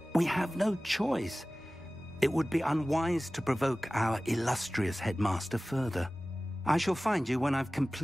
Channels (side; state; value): both; normal; correlation 0.97